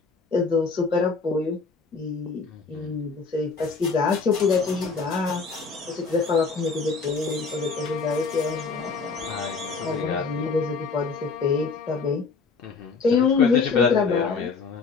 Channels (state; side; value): quieter; right; 4.6 dB